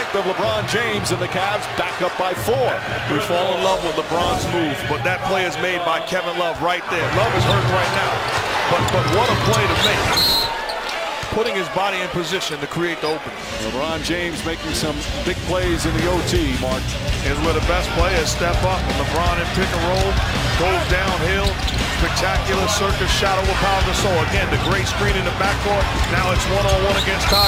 of LeBron James, and the Cavs back up by 4. We fall in love with LeBron's move, but that play is made by Kevin Love right there. Love is hurting right now, but what a play to make. Putting his body in position to create the opening. LeBron James making some big plays in the OT, Mark. Is where the best players step up, and LeBron in pick and roll, goes downhill. Spectacular circus shot over Pau Gasol. Again, the great screen in the backcourt. Now it's one-on-one against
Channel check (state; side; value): identical; both; correlation 1.00